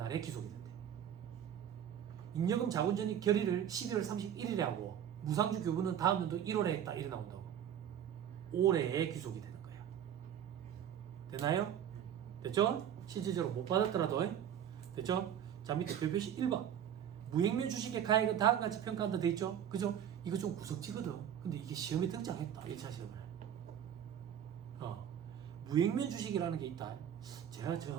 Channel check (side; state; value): left; quieter; 9.6 dB